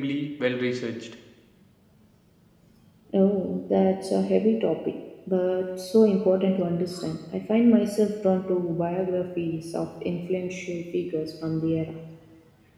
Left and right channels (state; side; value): identical; both; correlation 1.00